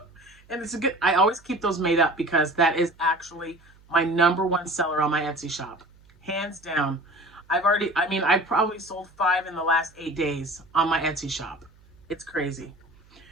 And it's a good, I always keep those made up because that is actually my #1 seller on my Etsy shop. Hands down. I probably sold 5 in the last 8 days on my Etsy shop. It's crazy.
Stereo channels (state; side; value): noise; right; hum, 28 dB below the sound